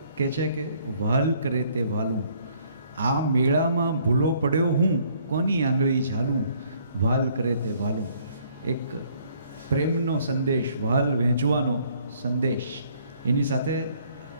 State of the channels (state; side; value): inverted; both; correlation -0.63